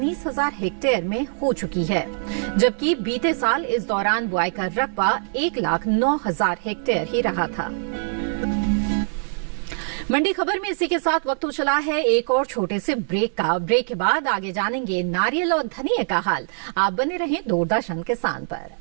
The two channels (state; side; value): silent; left; digital silence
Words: हेक्टेयर में हो चुकी है, जबकि बीते साल इस दौरान बुआई का रकबा 1,09,000 हेक्टेयर ही रहा था। मंडी खबर में इसी के साथ वक्त हो चला है एक और छोटे से ब्रेक का। ब्रेक के बाद आगे जानेंगे नारियल और धनिया का हाल। आप बने रहें दूरदर्शन किसान पर।